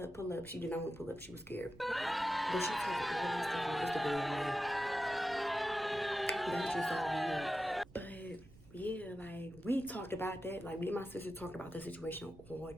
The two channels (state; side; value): noise; right; rumble, 21 dB below the sound